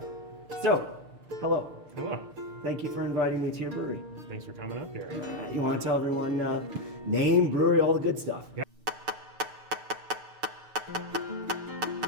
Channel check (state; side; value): late; left; 6.6 ms